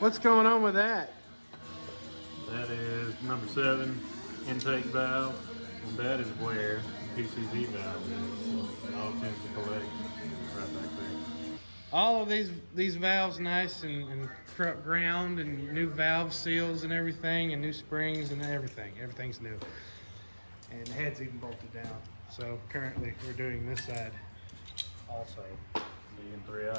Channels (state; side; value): inverted; both; correlation -1.00